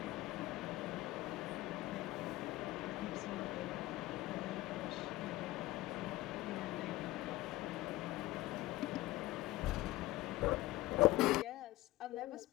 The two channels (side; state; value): right; quieter; 17.8 dB